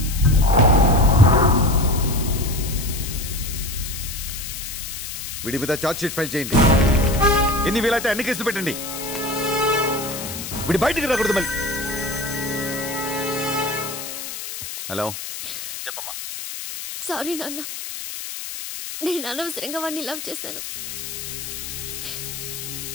వీడి మీద ఛార్జ్ షీట్ ఫైల్ చేయండి. ఎన్ని వీలైతే అన్ని కేసులు పెట్టండి. వీడి బయటికి రాకూడదు మళ్ళీ. హలో, చెప్పమ్మా. సారీ నాన్న, నేను అనవసరంగా వాడిని లవ్ చేశాను.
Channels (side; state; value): left; noise; hiss, 8 dB below the sound